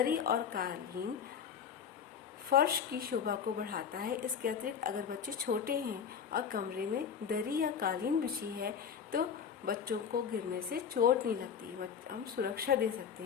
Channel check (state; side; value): quieter; right; 7.4 dB